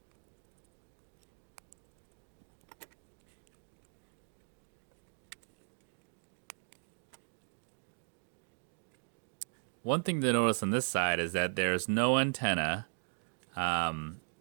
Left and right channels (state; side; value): silent; left; digital silence